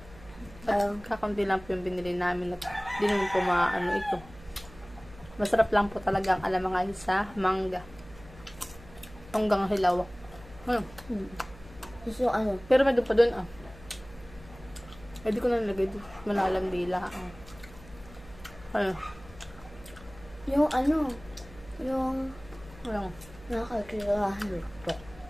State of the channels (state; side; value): noise; right; hum, 20 dB below the sound